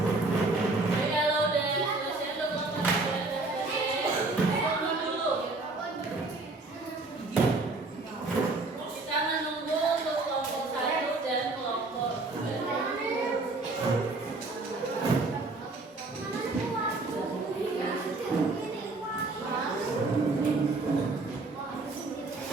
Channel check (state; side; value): quieter; left; 3.3 dB